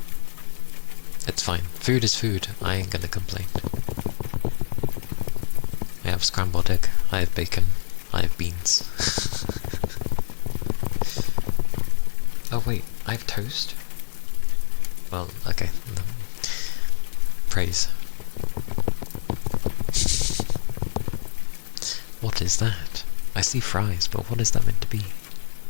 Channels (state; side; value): silent; right; digital silence